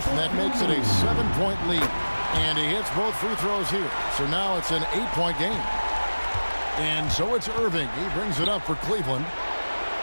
and that makes it a 7-point lead. And he hits both free throws here. So now it's an 8-point game. And so it's Irving. He brings it up for Cleveland.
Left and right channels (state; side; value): inverted; both; correlation -1.00